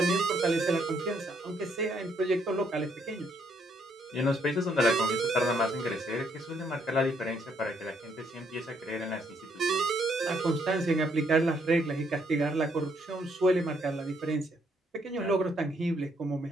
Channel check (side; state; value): both; normal; correlation 0.71